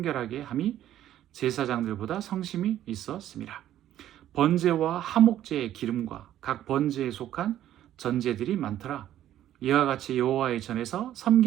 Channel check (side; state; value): left; quieter; 12.2 dB